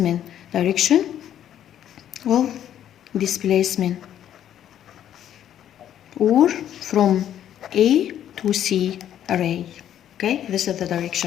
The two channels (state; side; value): quieter; right; 10.7 dB